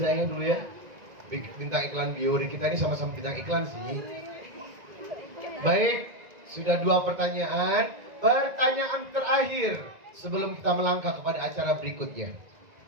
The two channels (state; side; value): late; left; 1.9 ms